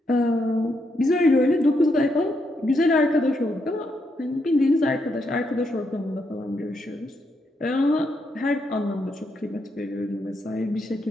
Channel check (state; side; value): normal; both; correlation 0.79